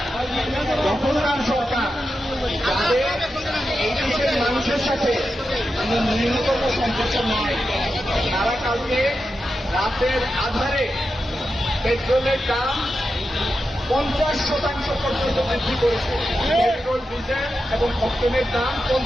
দখলদার সরকার, তাদের এই দেশের মানুষের সাথে ন্যূনতম সম্পর্ক নয়। তারা কালকে রাতের আধারে পেট্রোলের দাম 50% পর্যন্ত বৃদ্ধি করেছে। পেট্রোল, ডিজেল এবং অক্টেনের দাম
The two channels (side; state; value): both; normal; correlation 0.89